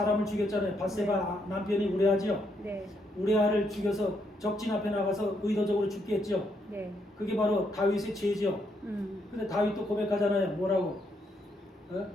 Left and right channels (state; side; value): normal; both; correlation 0.76